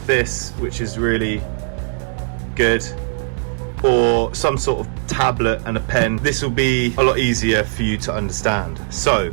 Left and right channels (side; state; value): left; silent; digital silence